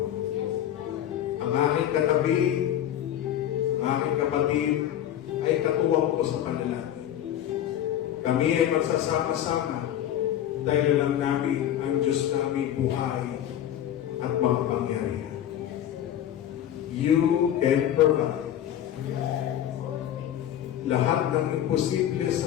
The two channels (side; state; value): right; quieter; 11.1 dB